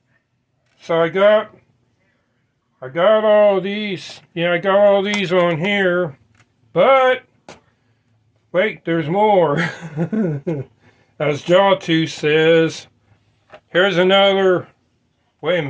So I got all these. Yeah, I got all these on here. But wait, there's more. As Jawtooth says, here's another. Wait a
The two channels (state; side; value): identical; both; correlation 1.00